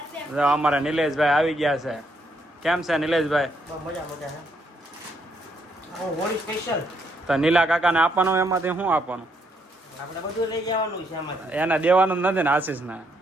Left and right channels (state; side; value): normal; both; correlation 0.75